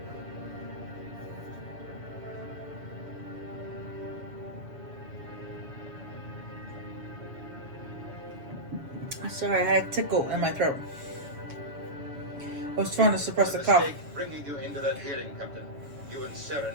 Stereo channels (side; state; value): left; late; 7.0 ms